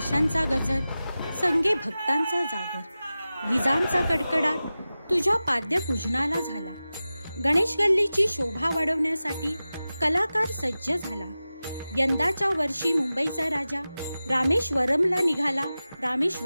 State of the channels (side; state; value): both; inverted; correlation -0.95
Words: ताशांचा गजर, संगे भक्तांचा जागर, विजांचा कडकडाट तुझ्या पाद्यपूजनाला झाला. गणेश गल्लीची शोभा वाढवण्यासाठी कलाकार सज्ज झाला. यंदाच्या वर्षी मुंबईचा राजा रामेश्वरमला